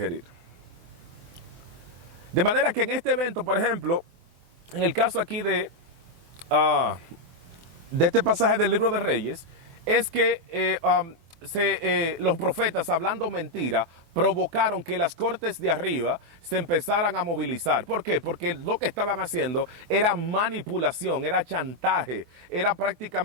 De manera que en este evento, por ejemplo, en el caso aquí de este pasaje del libro de Reyes, es que los profetas, hablando mentira, provocaron que las cortes de arriba se empezaran a movilizar. ¿Por qué? Porque lo que estaban haciendo era manipulación, era chantaje, era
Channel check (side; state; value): left; late; 24 ms